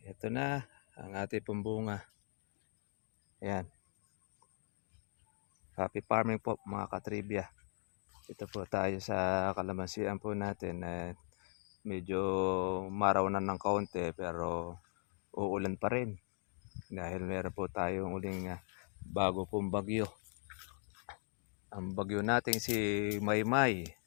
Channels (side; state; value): right; silent; 52 dB below the other